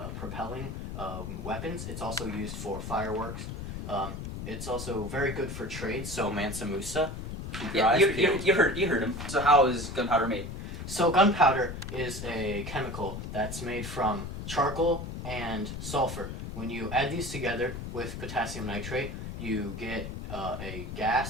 propelling weapons, it's also used for fireworks. It's also very good for trade, so Mansa Musa. Yeah, you heard him. So how is gunpowder made? So gunpowder is a chemical that's made from charcoal and sulfur. When you add these together with potassium nitrate, you get a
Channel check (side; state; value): left; noise; rumble, 7 dB below the sound